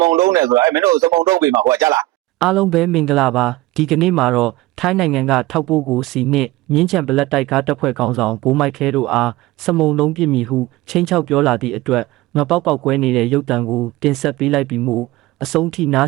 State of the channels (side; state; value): left; quieter; 18.5 dB